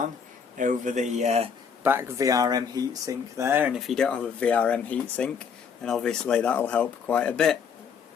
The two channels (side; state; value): right; quieter; 6.5 dB